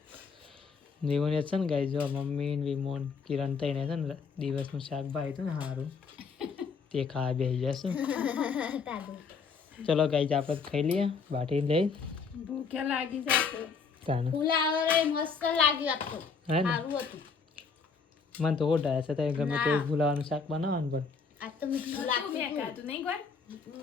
જીવન છે ને ગાઈ જો મમ્મી ને વિમોન કિરણ થઈને છે ને દિવસનું શાક ભાઈ હતું ને સારું તે ખાવા બેસી જશું તાદુ ચલો ગાઈ આપણે ખાઈ લઈએ બાટી લઈ ભૂખ્યા લાગી જશે. તાને ફુલાવરે મસ્ત લાગ્યું આખું હે ને સારું હતું મને તો ઓઢાય છે તો ગમે તે ભૂલાવાનું શાક બનાવવાનું પણ આ તો મીઠું લાગ્યું મેં ખાધું નહીં કોઈ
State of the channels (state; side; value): quieter; right; 5.3 dB